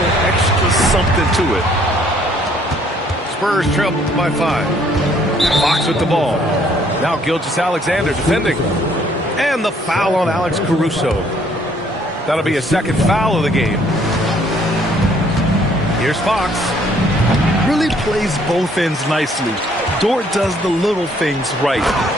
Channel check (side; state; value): both; normal; correlation 0.63